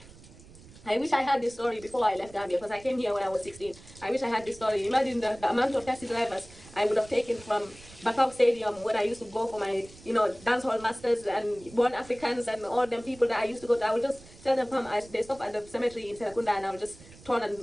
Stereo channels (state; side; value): noise; right; rumble, 21 dB below the sound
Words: I wish I had this story before I left Gambia, because I came here when I was 16. I wish I had this story. Imagine the amount of taxi drivers I would have taken from Bakau Stadium when I used to go for my, you know, dancehall masters and Born Africans and all them people that I used to go to. I would just tell them, come, they stop at the cemetery in Serakunda, and I would just turn